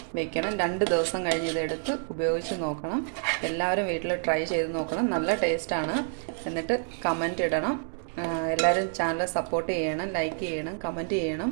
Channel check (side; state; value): left; silent; digital silence